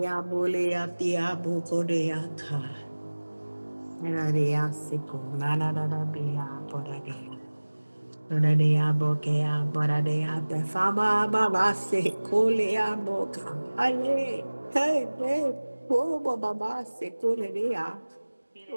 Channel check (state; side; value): inverted; both; correlation -1.00